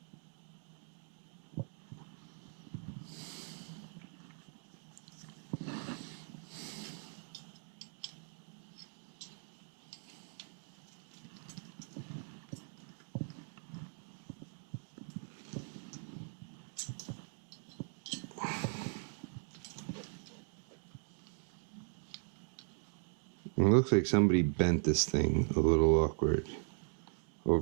It looks like somebody bent this thing a little awkward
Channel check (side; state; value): left; silent; 52 dB below the other